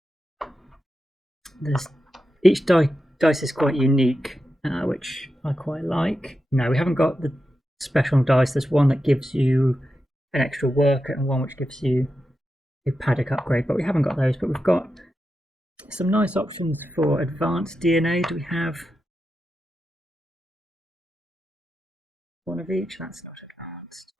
Each dice is quite unique, which I quite like. No, we haven't got the special dice. There's one that gives you an extra worker and one which gives you a paddock upgrade, but we haven't got those. But we've got some nice options for advanced DNA. Do we have one of each? That's not advanced.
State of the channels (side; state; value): both; normal; correlation 0.89